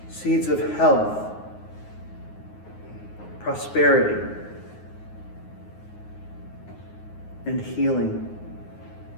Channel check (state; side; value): late; right; 9.5 ms